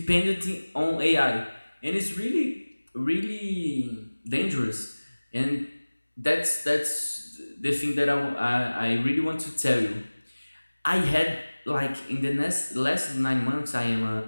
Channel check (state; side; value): inverted; both; correlation -1.00